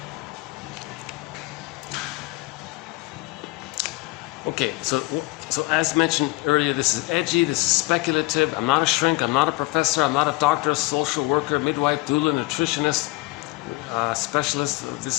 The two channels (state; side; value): quieter; right; 21.8 dB